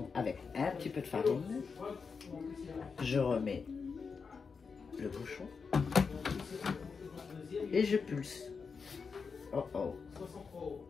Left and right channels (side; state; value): right; quieter; 5.3 dB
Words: avec un petit peu de farine. Je remets le bouchon et je pulse. Oh oh.